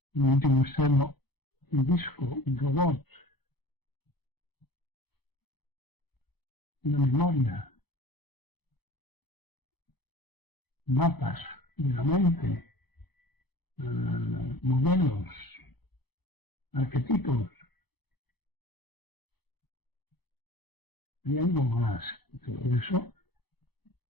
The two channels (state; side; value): late; right; 0.98 ms